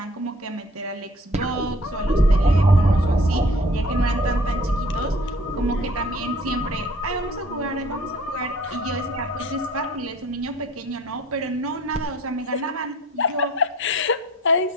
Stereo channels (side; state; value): both; normal; correlation 0.52